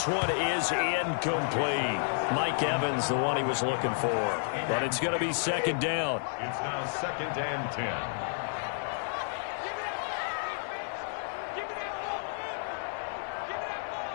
one is incomplete. Mike Evans, the one he was looking for. But it's going to be second down. It's now 2nd and 10.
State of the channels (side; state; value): right; silent; 57 dB below the other